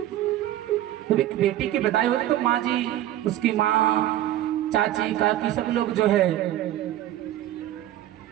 तो एक बेटी की विदाई होती तो माँ जी, उसकी माँ, चाची, काकी सब लोग जो है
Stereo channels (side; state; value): left; quieter; 13.2 dB